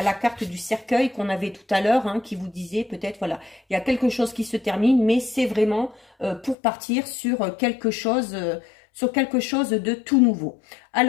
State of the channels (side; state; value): right; drops out; at 6.6 s